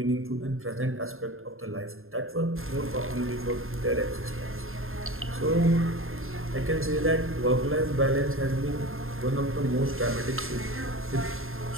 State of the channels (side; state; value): left; late; 0.61 ms